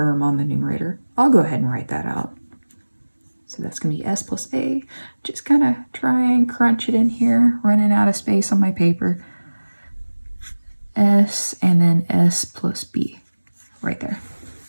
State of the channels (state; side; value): inverted; both; correlation -1.00